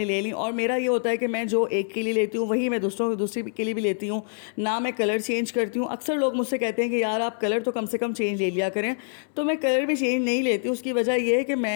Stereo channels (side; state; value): right; silent; digital silence